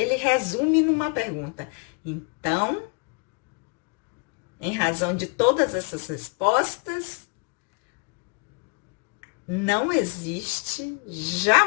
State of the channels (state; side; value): quieter; right; 34.7 dB